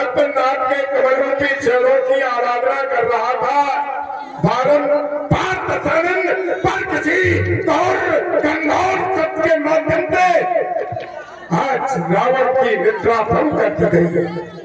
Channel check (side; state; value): both; identical; correlation 1.00